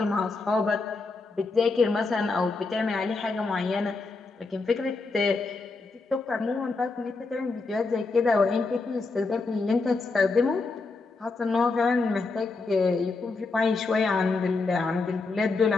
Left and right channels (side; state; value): right; quieter; 3.9 dB